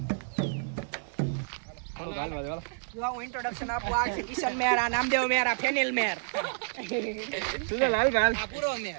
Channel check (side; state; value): left; silent; digital silence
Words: હું ઇન્ટ્રોડક્શન આપું. આ છે કિશન મેર, આ નામદેવ મેર, આ ફેનિલ મેર. લાલ ભાઈ આ પૂરો